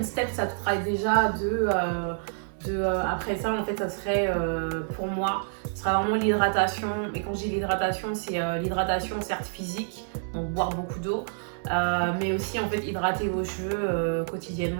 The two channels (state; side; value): silent; left; 60 dB below the other